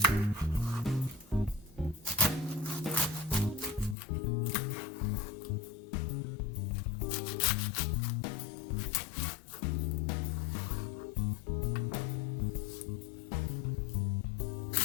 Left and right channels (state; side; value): drops out; right; at 4.0 s